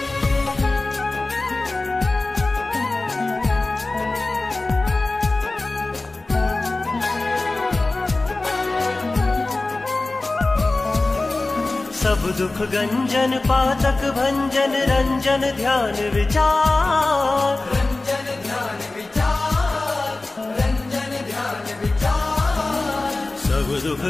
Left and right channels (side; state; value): right; quieter; 3.1 dB